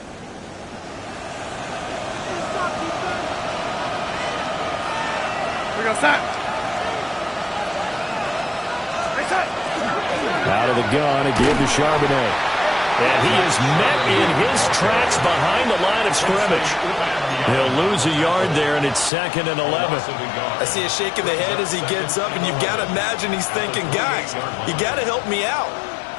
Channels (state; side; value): drops out; right; at 19.1 s